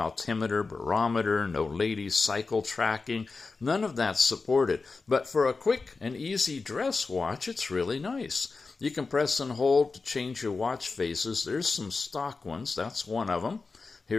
barometer, no ladies cycle tracking. None of that's supported. But for a quick and easy dress watch, it's really nice. You can press and hold to change your watch faces. There's some stock ones. That's one of them.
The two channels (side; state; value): right; quieter; 4.2 dB